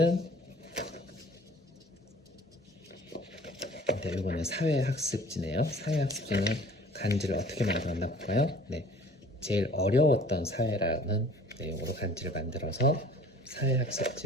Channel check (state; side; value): normal; both; correlation 0.50